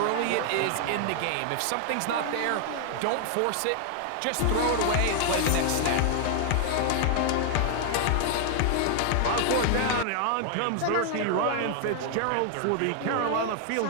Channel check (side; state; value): both; different; correlation 0.00